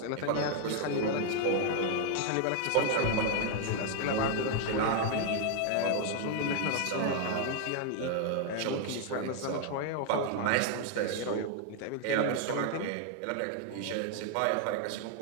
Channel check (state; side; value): different; both; correlation 0.00